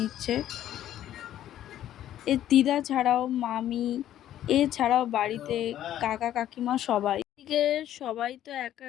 এর দিদা ছাড়াও মামি, এছাড়াও বাড়িতে কাকা কাকিমা সবাই। এদিকে সবাই তো এক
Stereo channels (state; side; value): quieter; right; 12.0 dB